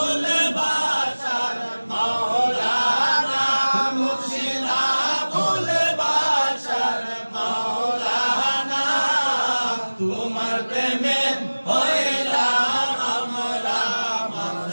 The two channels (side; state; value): both; inverted; correlation -1.00